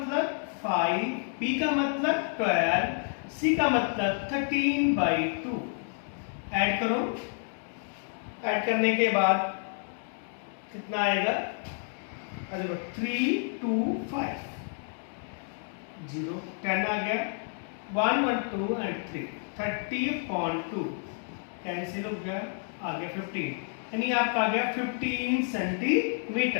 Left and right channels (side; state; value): right; silent; 55 dB below the other